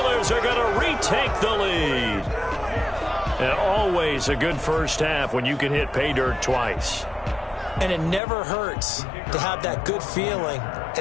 are going to retake the lead. And always a good first half when you can hit pay dirt twice. And it never hurts to have that good feeling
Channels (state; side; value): drops out; right; at 8.2 s